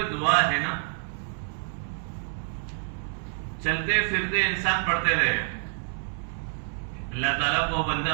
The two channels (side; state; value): left; silent; 59 dB below the other